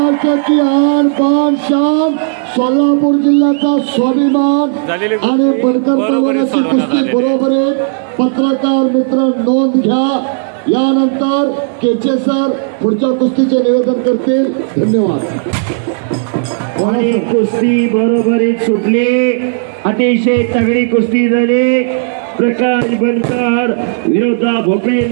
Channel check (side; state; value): left; silent; digital silence